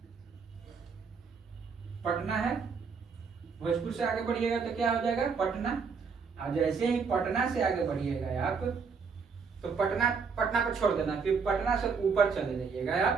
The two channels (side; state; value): left; quieter; 5.5 dB